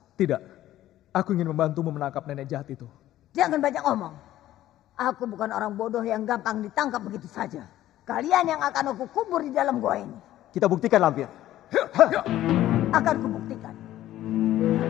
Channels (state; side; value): quieter; right; 13.8 dB